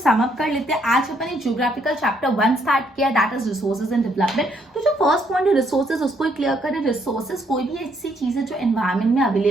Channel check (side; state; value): both; normal; correlation 0.71